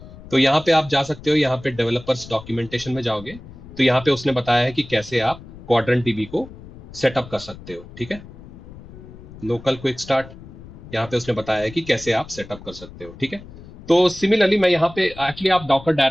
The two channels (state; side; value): noise; left; rumble, 17 dB below the sound